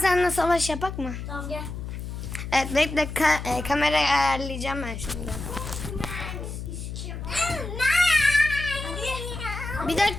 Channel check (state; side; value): noise; left; hum, 7 dB below the sound